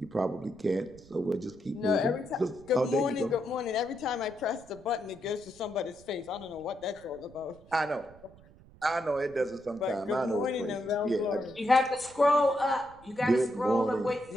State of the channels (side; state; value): right; noise; rumble, 23 dB below the sound